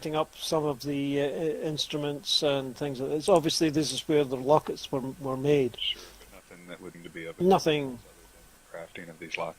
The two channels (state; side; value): identical; both; correlation 1.00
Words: up some of the instruments and things. It's obviously this is where the lockets were made. Sure, but nothing that wouldn't be of Nothing. other than crafting of these